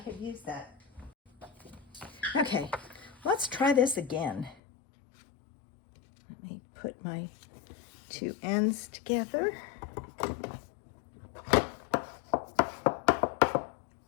used that. Okay, let's try this again. Let me put my 2 ends together. All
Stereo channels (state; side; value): drops out; right; at 4.5 s